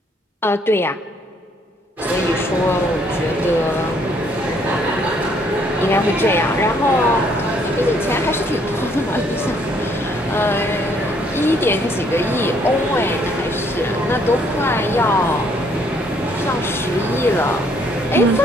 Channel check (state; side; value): normal; both; correlation 0.66